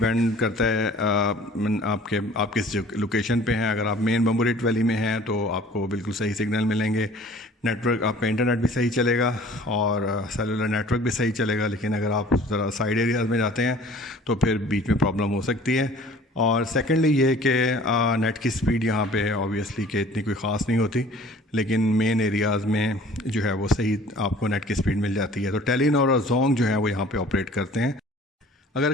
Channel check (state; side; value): normal; both; correlation 0.49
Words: करता है आप किस लोकेशन पे हैं। अगर आप मेन बम्बोरेट वैली में हैं तो आपको बिल्कुल सही सिग्नल मिलेंगे, नेटवर्क आपका इंटरनेट भी सही चलेगा और सेलुलर नेटवर्क भी सही चलेगा। लेकिन अगर आप ज़रा साइड एरियाज़ में जाते हैं तो फिर बीच में प्रॉब्लम हो सकती है। और सेकेंडली ये कि नेट की स्पीड यहाँ पे ऑब्वियसली कि इतनी कोई ख़ास नहीं होती, लेकिन मेन एरियाज़ में जो है वो सही आपको नेट की स्पीड मिल जाती है। तो टेलीनॉर और जोंग जो है वो यहाँ पे ऑपरेट करते हैं। अगर